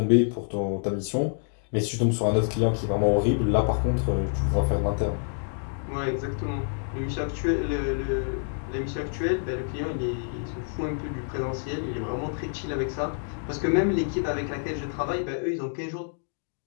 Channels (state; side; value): silent; right; digital silence